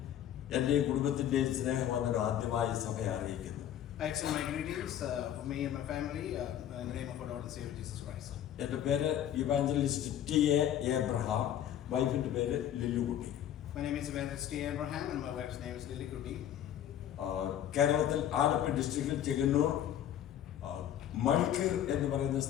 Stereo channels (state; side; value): quieter; right; 10.6 dB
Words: എന്റെ കുടുംബത്തിന്റെയും സ്നേഹം വന്നൊരു ആദ്യമായി സഭയെ അറിയിക്കുന്നു. I extend my greetings for me and my family in the name of our Lord and Savior Jesus Christ. എന്റെ പേര് ഇവാഞ്ചലിസ്റ്റ് ടി.എ. എബ്രഹാം, വൈഫിന്റെ പേര് ലില്ലുകുട്ടി. My name is Evangelist T. Abraham and my wife's name is Lily Kuti. കേരളത്തിൽ ആലപ്പുഴ ഡിസ്ട്രിക്റ്റിൽ ചെങ്ങന്നൂർ മൾക്കീർ എന്ന് പറയുന്ന